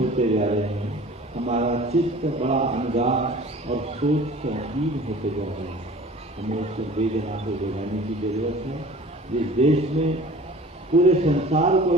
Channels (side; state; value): both; normal; correlation 0.44